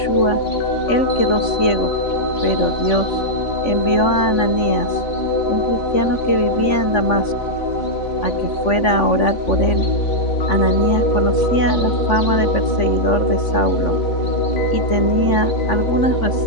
él quedó ciego, pero Dios envió a Ananías, un cristiano que vivía en Damasco, a que fuera a orar por él. Ananías conocía la fama de perseguidor de Saulo y tenía algunas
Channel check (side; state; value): right; late; 3.5 ms